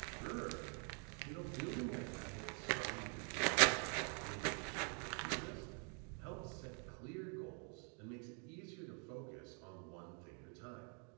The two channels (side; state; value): left; quieter; 39.9 dB